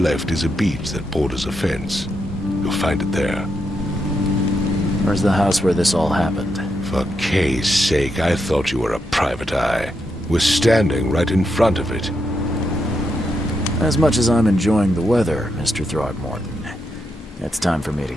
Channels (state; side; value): normal; both; correlation 0.82